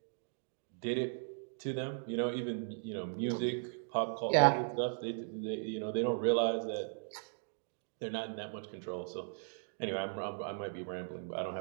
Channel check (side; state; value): left; silent; digital silence